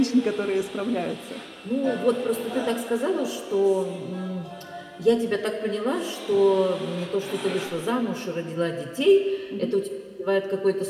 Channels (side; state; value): both; identical; correlation 1.00